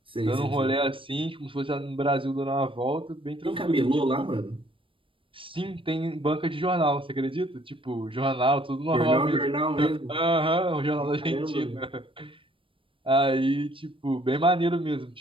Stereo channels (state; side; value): late; left; 0.25 ms